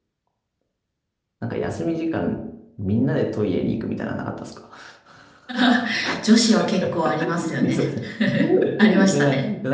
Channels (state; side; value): identical; both; correlation 1.00